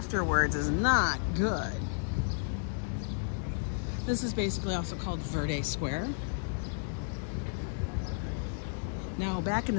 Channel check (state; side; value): silent; right; digital silence